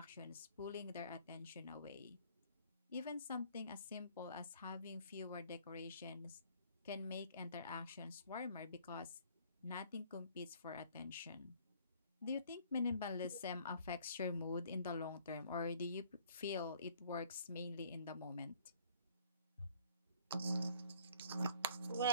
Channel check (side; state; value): both; inverted; correlation -0.57